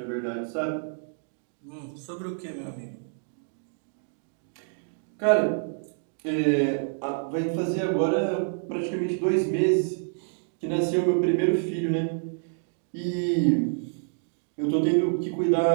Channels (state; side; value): silent; left; digital silence